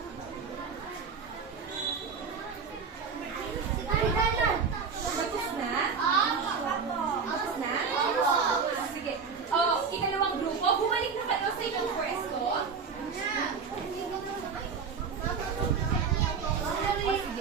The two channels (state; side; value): quieter; left; 5.6 dB